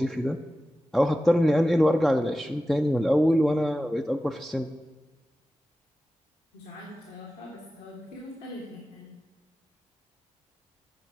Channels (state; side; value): normal; both; correlation 0.95